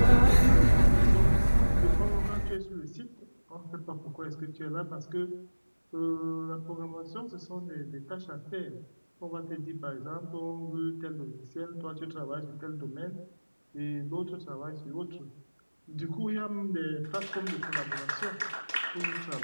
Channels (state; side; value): inverted; both; correlation -1.00